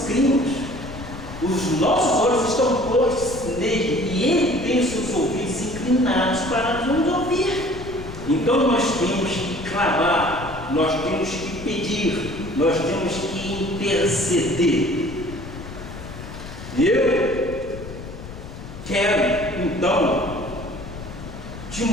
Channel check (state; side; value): noise; left; rumble, 12 dB below the sound